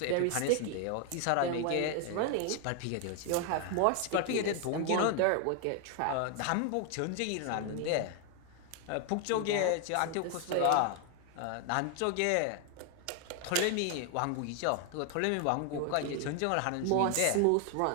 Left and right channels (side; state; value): both; different; correlation 0.00